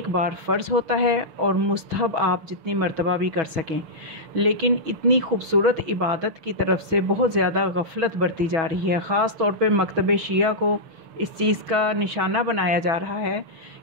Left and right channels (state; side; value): late; left; 6.2 ms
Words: बार फ़र्ज़ होता है और मुस्तहब आप जितनी मर्तबा भी कर सकें। लेकिन इतनी खूबसूरत इबादत की तरफ से बहुत ज़्यादा गफलत बरती जा रही है। ख़ास तौर पे मकतब शिया को इस चीज़ का निशाना बनाया जा रहा है